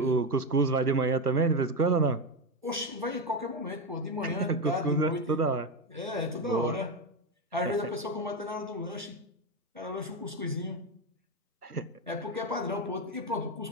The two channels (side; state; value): both; normal; correlation 0.13